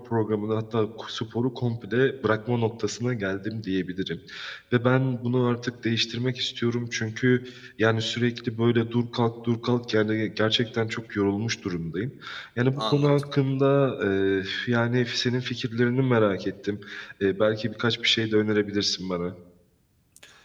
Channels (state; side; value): identical; both; correlation 1.00